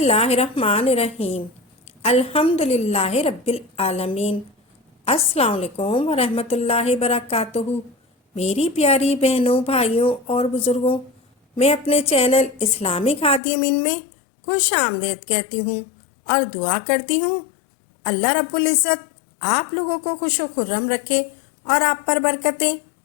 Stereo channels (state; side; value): drops out; right; at 13.4 s